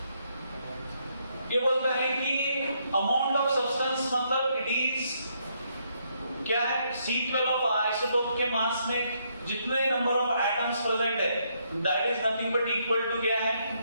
ये बोलता है कि अमाउंट ऑफ सब्सटेंस मतलब इट इज क्या है? C12 ऑफ आइसोटोप के मास में जितने नंबर ऑफ एटम्स प्रेजेंट है that is nothing but equal to क्या है?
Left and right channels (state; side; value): inverted; both; correlation -0.74